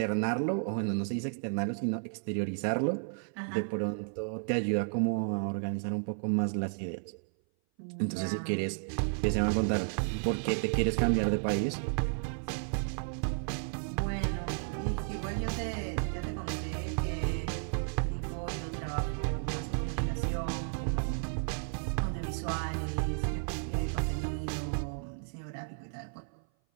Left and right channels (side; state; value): left; silent; 56 dB below the other